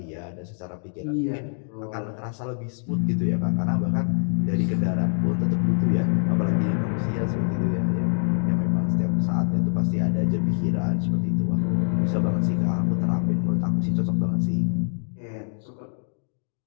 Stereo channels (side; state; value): right; silent; 62 dB below the other